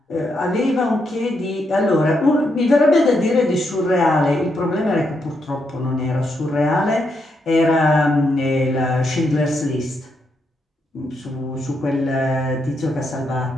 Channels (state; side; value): normal; both; correlation 0.80